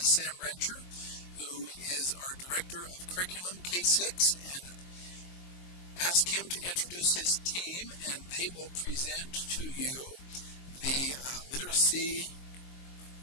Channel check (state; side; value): late; right; 22 ms